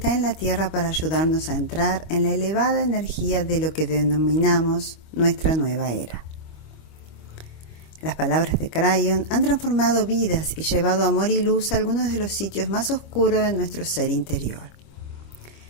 en la Tierra para ayudarnos a entrar en la elevada energía de lo que denominamos nuestra nueva era. Las palabras de Crayon han transformado vidas y llevado amor y luz a algunos de los sitios más oscuros de nuestro ser interior.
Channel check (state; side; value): late; right; 25 ms